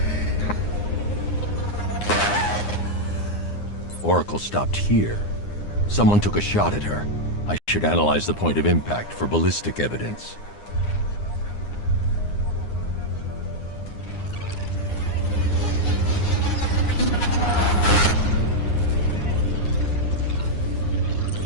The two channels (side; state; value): right; late; 9.7 ms